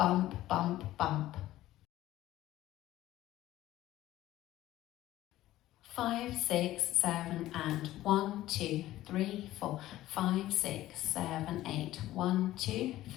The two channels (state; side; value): quieter; right; 15.0 dB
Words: bump, bump. 5, 6, 7, and 1, 2, 3, 4, 5, 6, 7, 8, 1, 2,